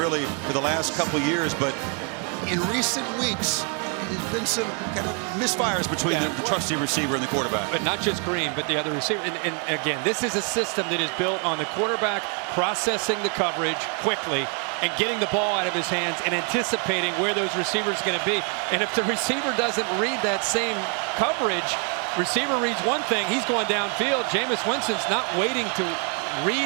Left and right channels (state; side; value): quieter; left; 38.8 dB